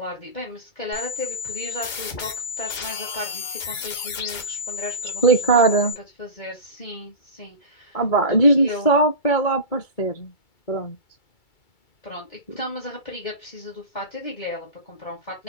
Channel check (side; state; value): right; late; 2.3 ms